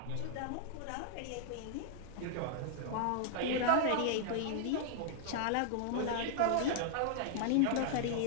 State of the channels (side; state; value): both; different; correlation -0.01